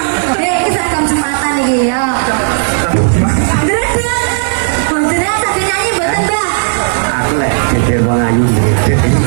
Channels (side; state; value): left; silent; digital silence